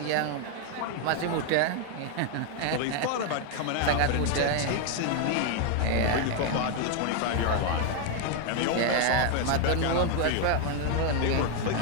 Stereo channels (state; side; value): different; both; correlation 0.01